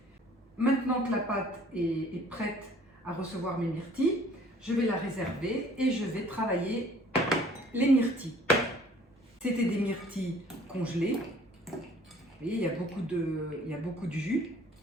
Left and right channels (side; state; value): both; normal; correlation 0.54